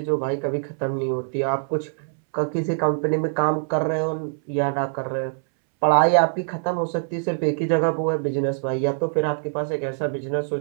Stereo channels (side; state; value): left; silent; 63 dB below the other